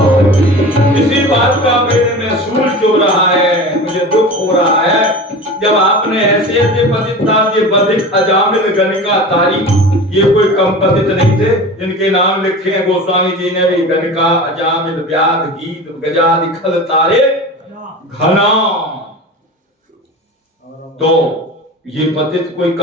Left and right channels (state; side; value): normal; both; correlation 0.34